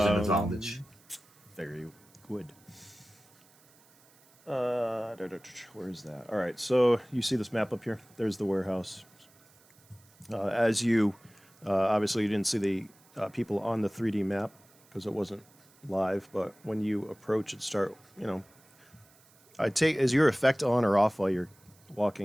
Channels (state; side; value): noise; right; hiss, 29 dB below the sound